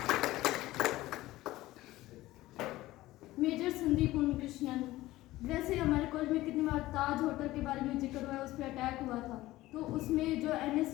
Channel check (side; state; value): right; quieter; 17.1 dB